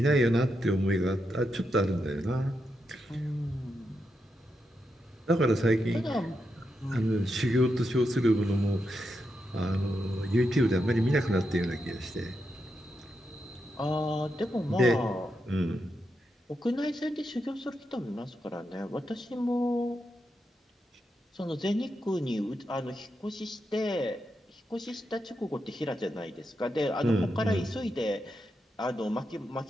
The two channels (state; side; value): normal; both; correlation 0.85